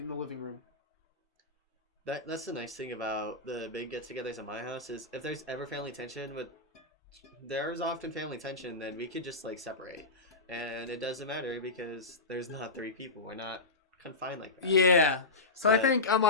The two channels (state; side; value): quieter; right; 3.2 dB